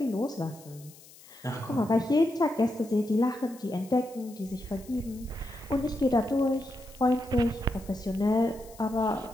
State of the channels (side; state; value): left; noise; hiss, 22 dB below the sound